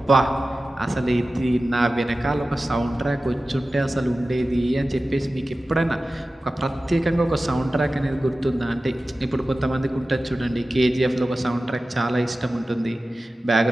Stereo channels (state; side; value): normal; both; correlation 0.95